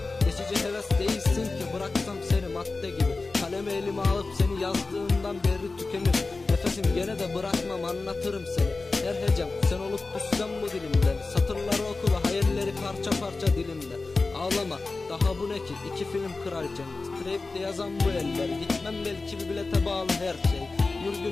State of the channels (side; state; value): right; quieter; 3.7 dB